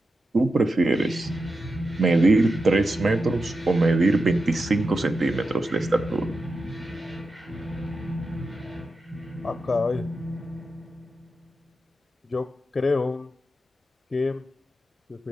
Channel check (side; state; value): both; normal; correlation 0.89